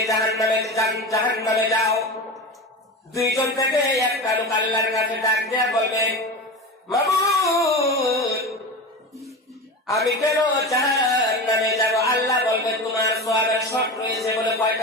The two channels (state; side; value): normal; both; correlation 0.26